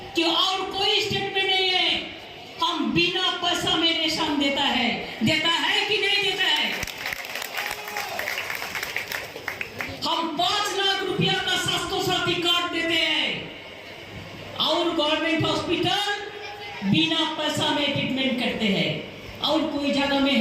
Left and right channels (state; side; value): identical; both; correlation 1.00